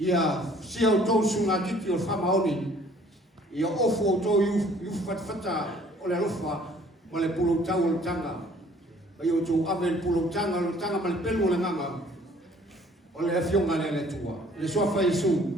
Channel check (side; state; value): both; normal; correlation 0.56